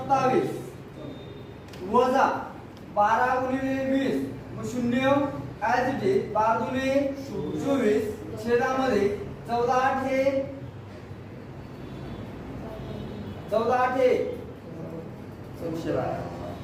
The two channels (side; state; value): both; identical; correlation 1.00